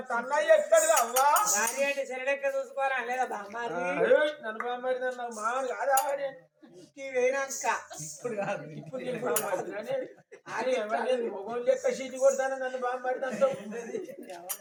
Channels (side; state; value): both; identical; correlation 1.00